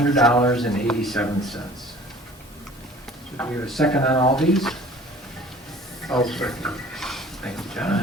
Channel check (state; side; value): normal; both; correlation 0.48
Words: So do we have a second on all these? I'll second. Thank you,